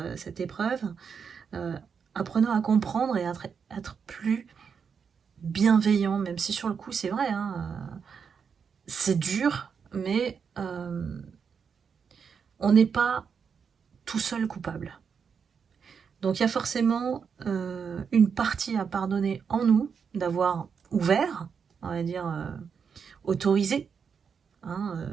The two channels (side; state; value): left; quieter; 6.4 dB